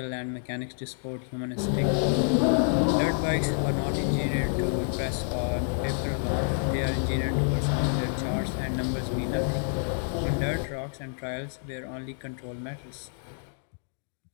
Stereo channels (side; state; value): right; silent; digital silence